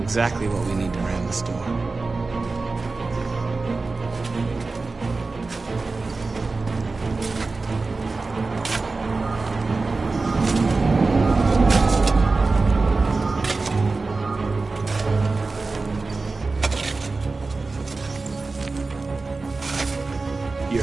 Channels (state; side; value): quieter; left; 3.8 dB